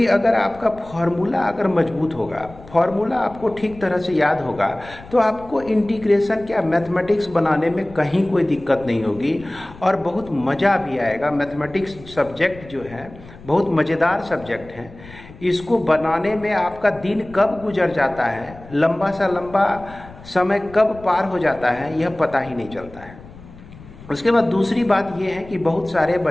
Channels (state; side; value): noise; left; rumble, 19 dB below the sound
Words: अगर आपका फॉर्मूला अगर मजबूत होगा, फॉर्मूला आपको ठीक तरह से याद होगा, तो आपको इंटीग्रेशन क्या मैथमेटिक्स बनाने में कहीं कोई दिक्कत नहीं होगी और बहुत मज़ा भी आएगा। मैथमेटिक्स सब्जेक्ट जो है बहुत मज़ेदार सब्जेक्ट है। इसको बनाने में आपका दिन कब गुजर जाता है, लंबा सा लंबा समय कब पार हो जाता है, यह पता ही नहीं चलता है। उसके बाद दूसरी बात यह है कि बहुत सारे